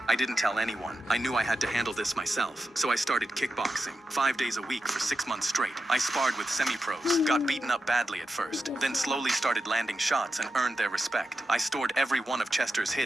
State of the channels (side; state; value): both; normal; correlation 0.89